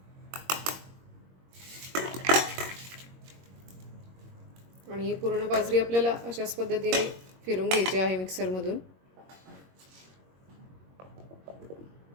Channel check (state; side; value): late; left; 22 ms